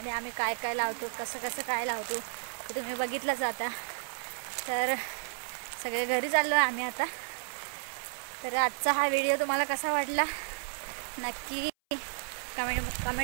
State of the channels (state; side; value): silent; left; 56 dB below the other